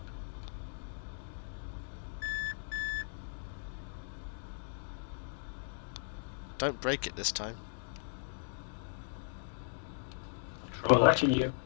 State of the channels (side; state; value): right; silent; digital silence